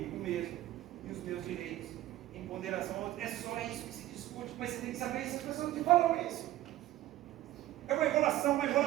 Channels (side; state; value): left; quieter; 15.0 dB